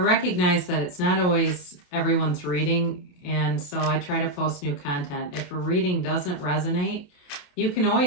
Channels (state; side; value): late; right; 28 ms